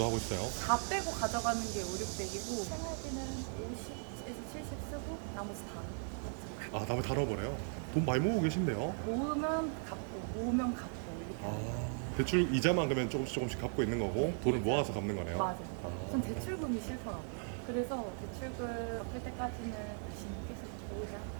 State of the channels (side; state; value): left; silent; 53 dB below the other